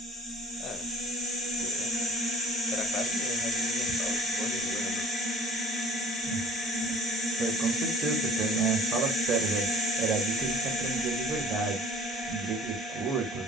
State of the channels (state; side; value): normal; both; correlation 0.50